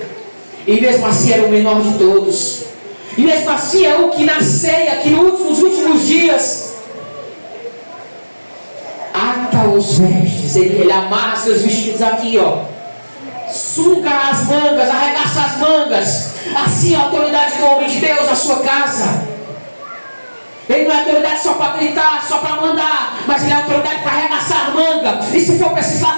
E mesmo assim era o menor de todos. E mesmo assim é o que na ceia, que nos últimos dias ata os vestes. Ele amarra seus vestidos aqui, ó. Suga as mangas, arregaça as mangas. Assim é a autoridade do homem de Deus na sua casa. Ele não é autoridade só para gritar, só para mandar, mas ele é autoridade para arregaçar a manga. E se for preciso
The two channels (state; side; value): inverted; both; correlation -1.00